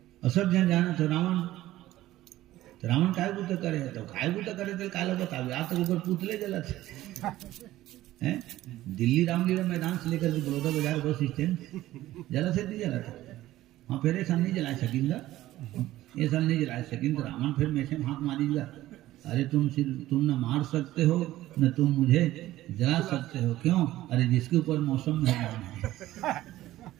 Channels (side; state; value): left; quieter; 15.3 dB